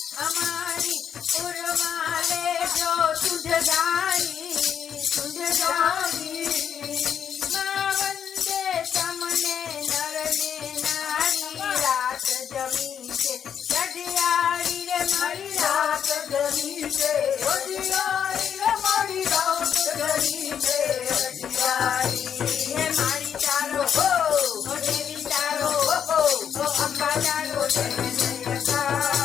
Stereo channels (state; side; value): quieter; right; 8.3 dB